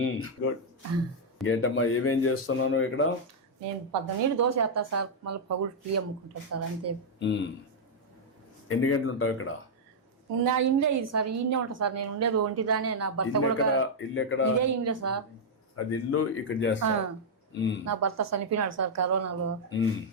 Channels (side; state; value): both; normal; correlation -0.04